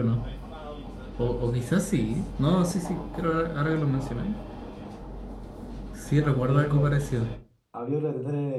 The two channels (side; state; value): both; identical; correlation 1.00